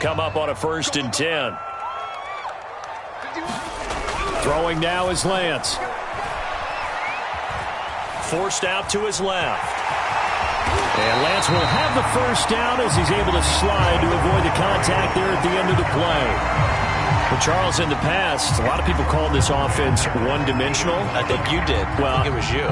up on a 1st and 10. Throwing now is Lance. Forced out to his left. And Lance will have the first down as he's able to slide to avoid the contact there at the end of the play. Well, Charles, in the past, a lot of people called this offense one-dimensional. I think you did. Well, I think it was you.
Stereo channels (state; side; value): identical; both; correlation 1.00